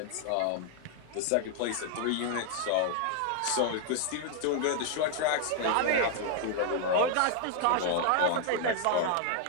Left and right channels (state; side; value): different; both; correlation 0.00